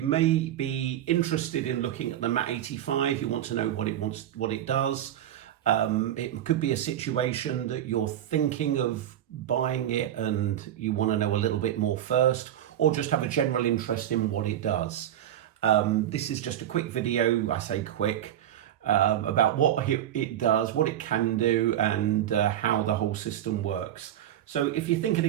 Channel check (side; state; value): left; quieter; 11.4 dB